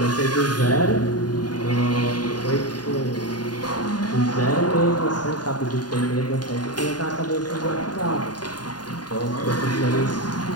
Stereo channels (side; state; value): right; late; 0.70 ms